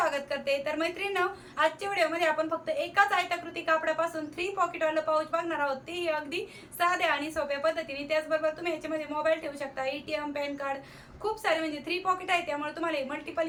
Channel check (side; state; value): both; identical; correlation 1.00